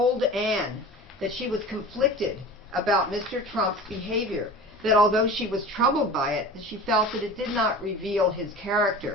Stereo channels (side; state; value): both; normal; correlation 0.36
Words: Ann that she was conflicted about Mr. Trump's behavior, that although she was troubled by it, that she felt that it did not reveal his